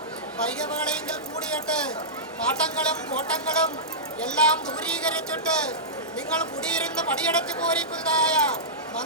വൈകവേളയെങ്കിൽ കൂടിയിട്ട് പാട്ടങ്ങളും കോട്ടങ്ങളും എല്ലാം ദൂരീകരിച്ചിട്ട് നിങ്ങൾ കുടിയിരുന്ന് പടിയടച്ച് പോരിക്കുന്നതായ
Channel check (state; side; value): normal; both; correlation -0.15